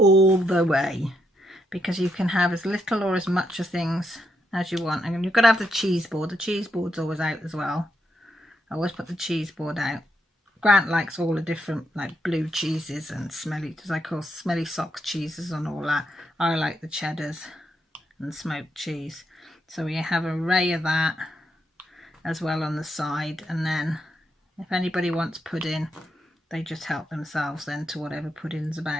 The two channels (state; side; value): normal; both; correlation 0.80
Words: the way, because you can have as little or as much of things as you want. And you've got to have the cheese board. The cheese board's always out as well. I always put the cheese board out. Grant likes all the different like blue cheeses and smelly, as I call smelly socks cheeses and all that. I like the cheddars and smoked cheese. So we have an array of that as well on the side. And then if anybody wants pudding, they just help themselves then to whatever pudding's